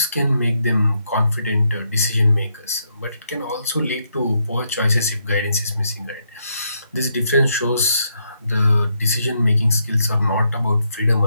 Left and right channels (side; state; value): both; inverted; correlation -0.78